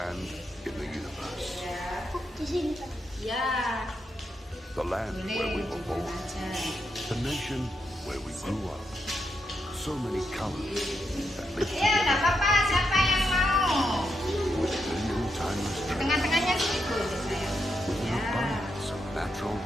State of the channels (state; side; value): normal; both; correlation 0.83